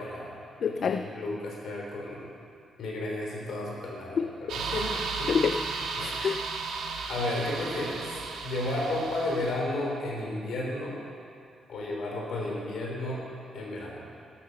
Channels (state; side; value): normal; both; correlation 0.71